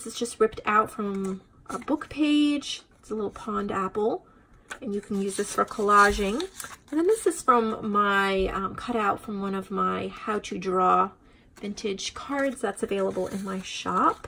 is just ripped out from a book page. It's a little pond apple, and you can use this for collaging. And then this is from my cutout from one of my how to draw vintage cards that's available in my shop.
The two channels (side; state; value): both; identical; correlation 1.00